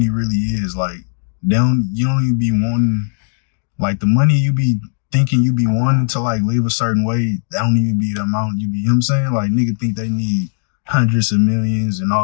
really is. Like, you don't even be wanting, like, the money you be thinking you be wanting to, like, live a certain way, that don't even be the amount you be, you know what I'm saying? Like, nigga think they need hundreds of millions and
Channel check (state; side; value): silent; right; digital silence